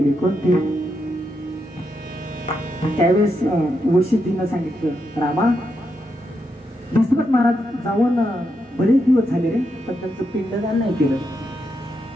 कोणती. त्यावेळेस वशिष्ठीनं सांगितलं रामा दशरथ महाराज जाऊन बरेच दिवस झाले रे पण त्यांचं पिंडदान नाही केलं.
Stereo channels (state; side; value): normal; both; correlation 0.83